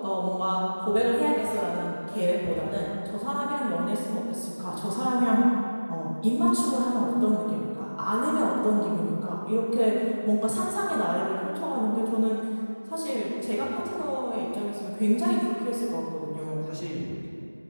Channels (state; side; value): inverted; both; correlation -1.00